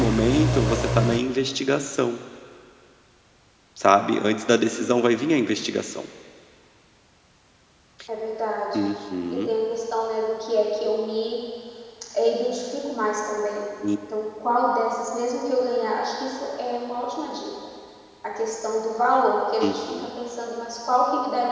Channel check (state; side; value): identical; both; correlation 1.00